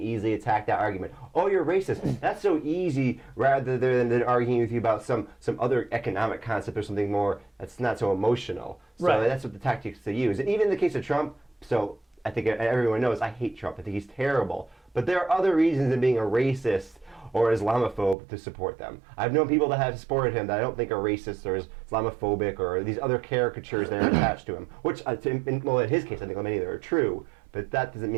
attack that argument. Oh, you're racist. That's so easy, rather than arguing with you about some other economic concept or something more that's not so emotional. So Right. That's what the tactics they use. And even in the case of Trump, so I think everyone knows I hate Trump. I think he's terrible. But there are other reasons than being a racist or Islamophobe to support them. I've known people that have supported him that I don't think are racist or Islamophobic or these other caricatures that are attached to him, which, in his case, I think many of them are true, but that doesn't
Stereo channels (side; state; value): left; drops out; at 18.2 s